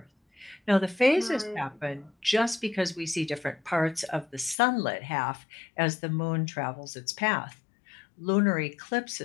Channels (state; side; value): drops out; right; at 4.5 s